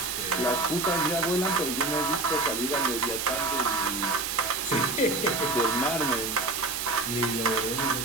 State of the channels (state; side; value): noise; right; hiss, 4 dB below the sound